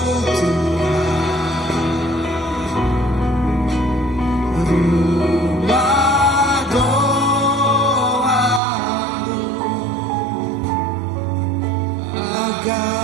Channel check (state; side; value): drops out; left; at 8.6 s